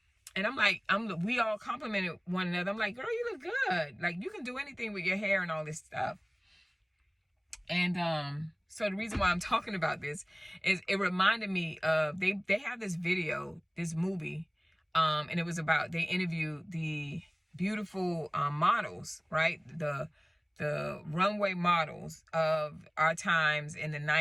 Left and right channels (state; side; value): identical; both; correlation 1.00